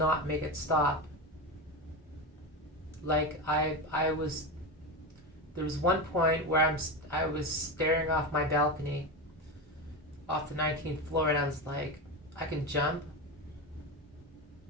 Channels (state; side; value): normal; both; correlation 0.19